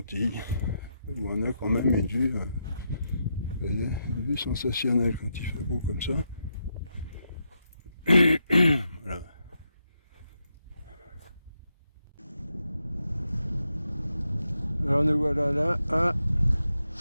On a quand même une vue, vous voyez, une vue sensationnelle quand il fait beau comme ça. Voilà. Alors nous voilà là à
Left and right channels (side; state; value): both; inverted; correlation -0.83